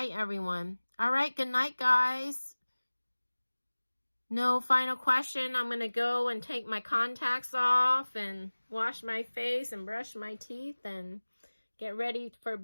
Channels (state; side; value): inverted; both; correlation -1.00